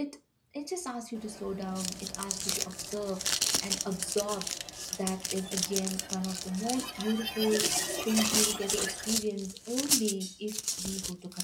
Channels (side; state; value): both; identical; correlation 1.00